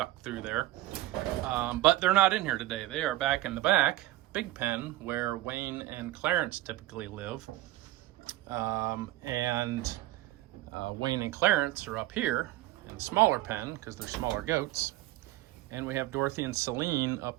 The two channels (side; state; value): left; quieter; 16.3 dB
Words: through there. But they're not in here today. They are back in the back, big pen, where Wayne and Clarence typically live. Wayne and Clarence are up here in the smaller pen because they're smaller goats, and we have Dorothy and Celine